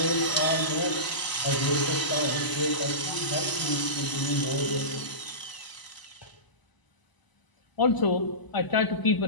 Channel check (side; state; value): right; late; 1.0 ms